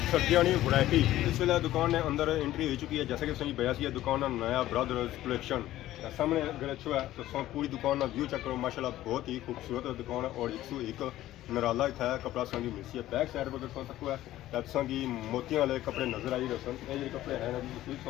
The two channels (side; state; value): right; quieter; 14.5 dB